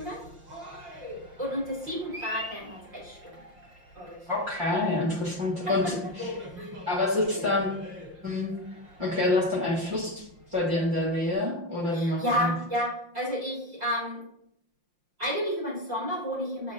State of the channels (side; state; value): left; late; 5.7 ms